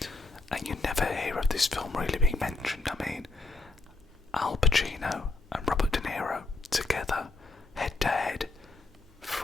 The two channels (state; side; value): quieter; right; 3.5 dB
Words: and you never hear of this film really being mentioned. I mean, Al Pacino and